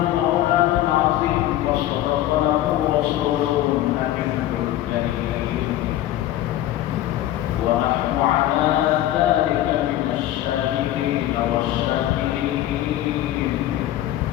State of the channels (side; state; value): right; quieter; 13.6 dB